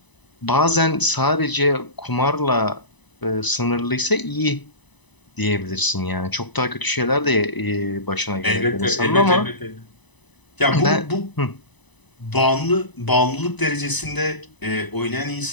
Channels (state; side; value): late; right; 1.0 ms